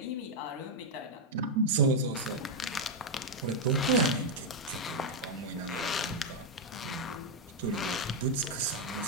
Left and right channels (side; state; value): both; normal; correlation 0.00